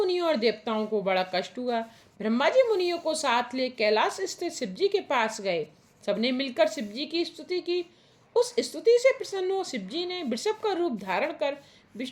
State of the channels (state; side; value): identical; both; correlation 1.00